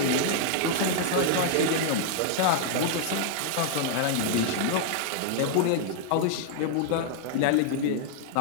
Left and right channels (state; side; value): different; both; correlation 0.00